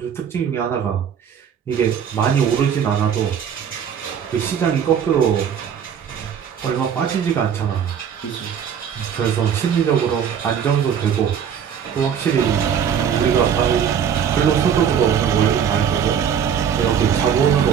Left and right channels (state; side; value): quieter; left; 8.1 dB